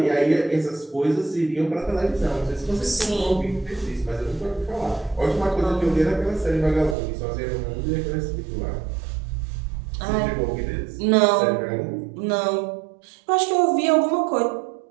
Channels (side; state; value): left; drops out; at 7.0 s